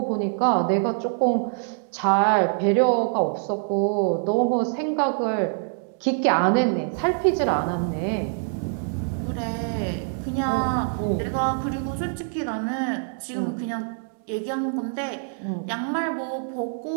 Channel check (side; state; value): left; silent; digital silence